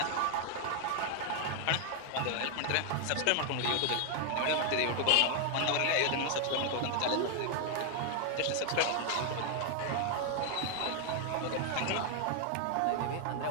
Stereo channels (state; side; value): different; both; correlation 0.00